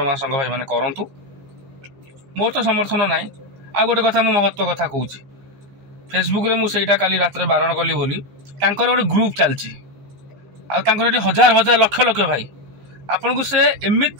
महासंघ भाई मैंने करूँ मोर तो समर्थन ना। आ गोटे कथा मु महत्व कथा कहूँ फेसबुक रे मुझे काली रात बारण कली बोली गोटे ग्रुप चलती आउे हजार हजार लक्ष लक्ष भाई आपन को से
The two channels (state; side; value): late; left; 15 ms